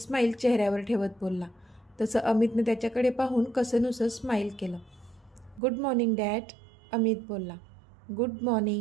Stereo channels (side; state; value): left; drops out; at 5.6 s